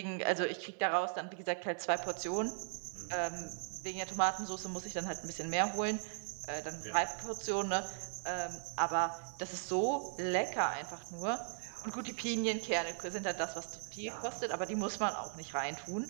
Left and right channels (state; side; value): silent; left; 52 dB below the other